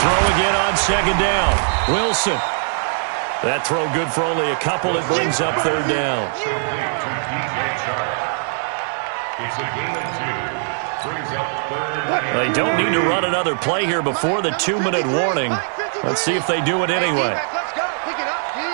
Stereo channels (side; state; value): left; silent; digital silence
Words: again on second down. Wilson. That throw good for only a couple. It brings up third down. It's a gain of 2. Brings up third. They don't need to run another play here before the 2-minute warning. Let's see if they do it anyway.